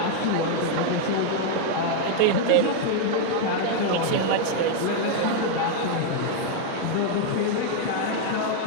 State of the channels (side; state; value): both; different; correlation 0.00